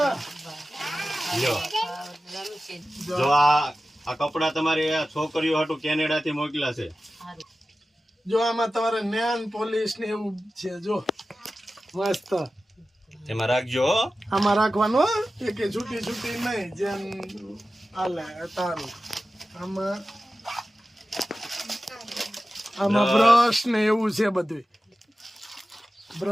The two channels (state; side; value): normal; both; correlation 0.94